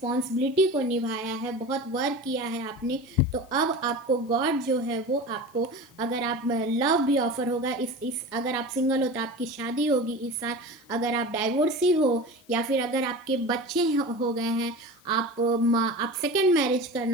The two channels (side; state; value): left; noise; hiss, 29 dB below the sound